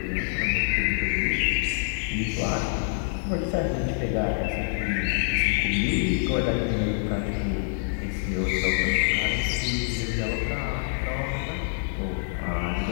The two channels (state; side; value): silent; right; digital silence